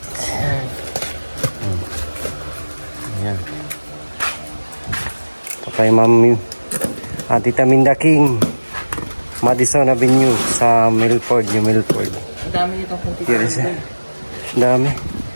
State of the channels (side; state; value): both; inverted; correlation -1.00